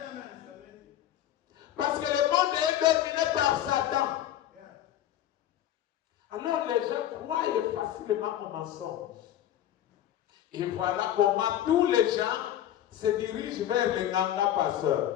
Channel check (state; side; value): quieter; right; 11.9 dB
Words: amen. Parce que le monde est dominé par Satan. Alors les gens croient facilement aux mensonges. Et voilà comment tous les gens se dirigent vers les Ganga